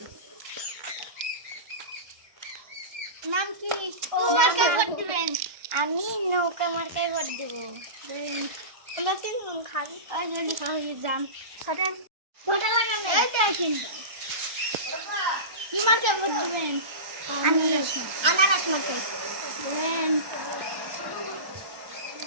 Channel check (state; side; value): late; left; 1.2 ms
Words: নাম কি? কোন মার্কায় ভোট দিবেন? আমি নৌকা মার্কায় ভোট দেব। আমরা তিনজন খান আর যদি খাওয়া যান খাটেন ভোটালা কেন? এই দেখেন কি মার্কায় ভোট দিবেন? আমি আনারস মার্কায় দিবেন।